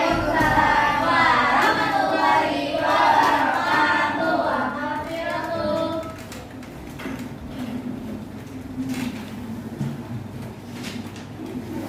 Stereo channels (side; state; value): both; identical; correlation 1.00